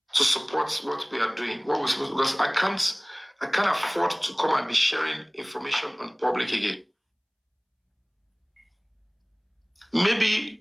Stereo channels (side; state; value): both; identical; correlation 1.00